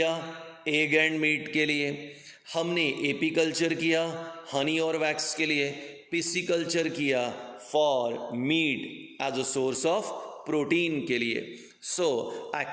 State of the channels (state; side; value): identical; both; correlation 1.00